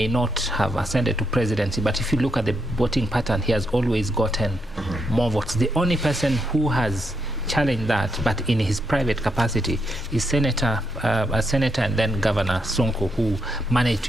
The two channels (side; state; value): both; normal; correlation 0.80